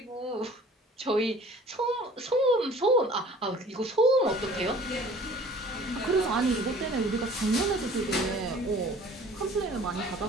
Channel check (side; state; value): both; normal; correlation 0.49